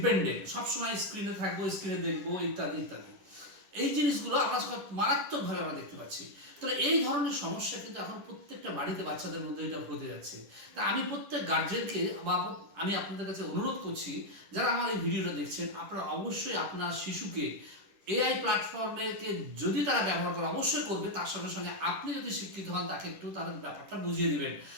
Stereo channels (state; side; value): late; left; 10 ms